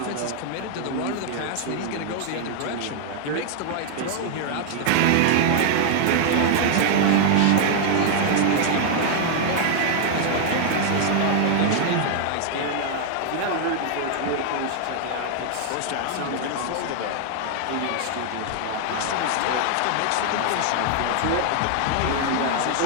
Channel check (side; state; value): both; different; correlation 0.00